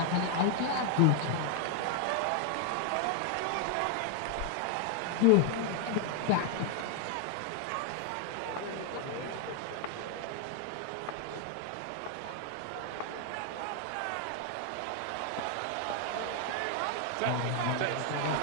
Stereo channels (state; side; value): different; both; correlation 0.00